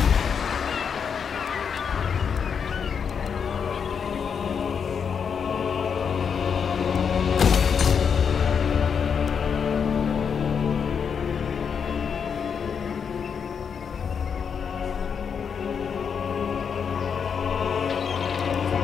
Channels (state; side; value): quieter; right; 6.7 dB